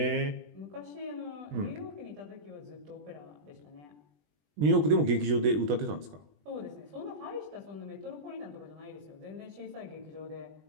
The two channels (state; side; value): late; left; 20 ms